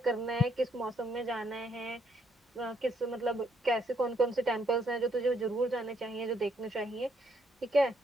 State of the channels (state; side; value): normal; both; correlation 0.72